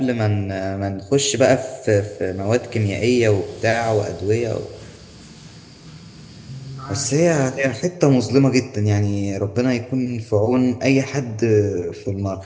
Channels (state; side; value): identical; both; correlation 1.00